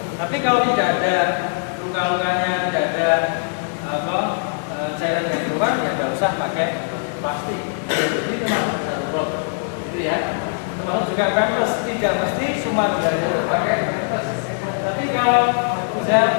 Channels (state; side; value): silent; right; digital silence